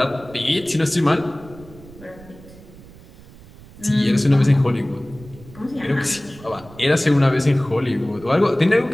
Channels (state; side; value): noise; right; rumble, 21 dB below the sound